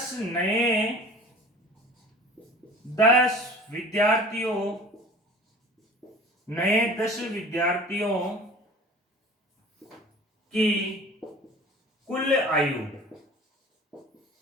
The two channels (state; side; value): normal; both; correlation 0.43